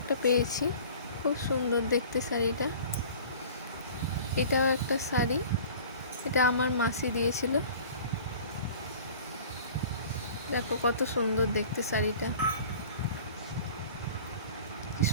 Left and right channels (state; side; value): inverted; both; correlation -0.44